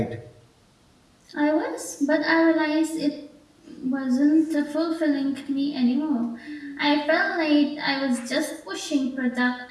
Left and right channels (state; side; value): identical; both; correlation 1.00